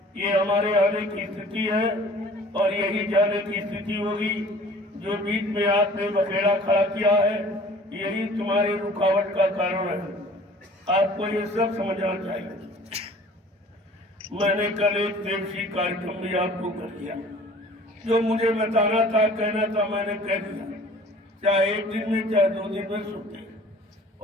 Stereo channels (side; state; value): both; normal; correlation 0.49